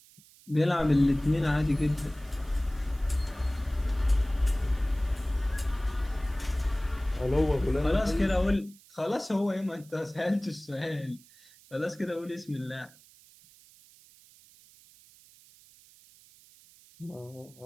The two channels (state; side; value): noise; right; hiss, 25 dB below the sound